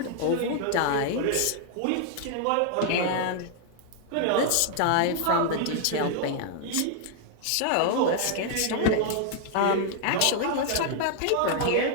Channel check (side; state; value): both; different; correlation 0.00